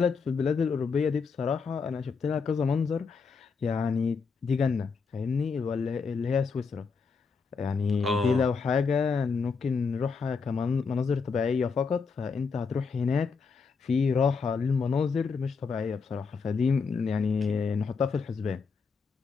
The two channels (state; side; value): quieter; right; 5.2 dB